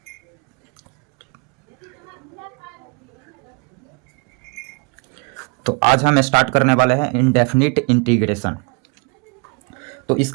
तो आज हम स्टार्ट करने वाले हैं इनडेफिनिट इंटीग्रेशन। तो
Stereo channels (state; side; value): quieter; left; 34.5 dB